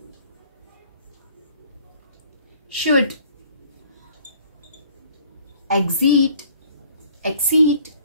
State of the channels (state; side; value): inverted; both; correlation -0.57